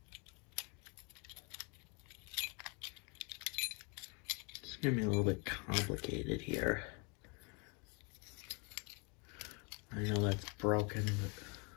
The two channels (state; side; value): quieter; right; 33.6 dB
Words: It's going to be a little bit complicated here. I know that's broken, but